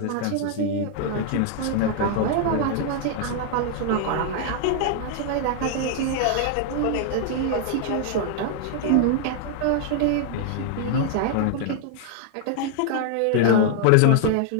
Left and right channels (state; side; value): different; both; correlation 0.00